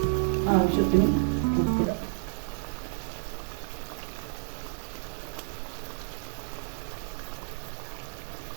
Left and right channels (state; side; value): silent; left; digital silence